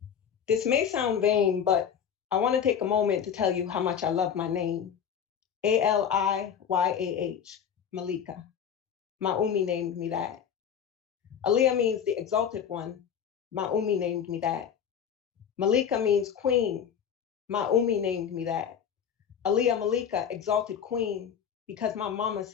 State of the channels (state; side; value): quieter; right; 8.1 dB